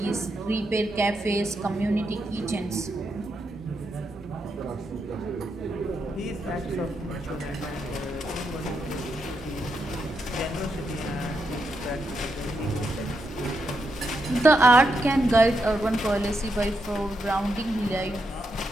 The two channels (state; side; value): normal; both; correlation 0.83